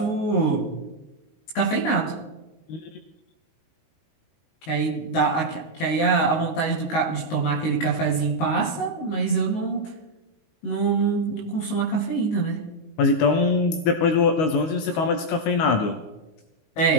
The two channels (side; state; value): right; late; 19 ms